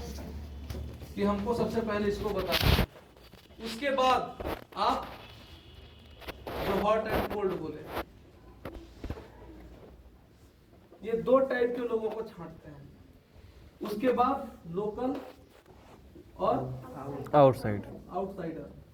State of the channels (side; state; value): both; identical; correlation 1.00